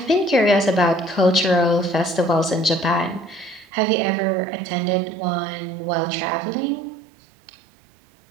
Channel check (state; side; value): drops out; left; at 3.7 s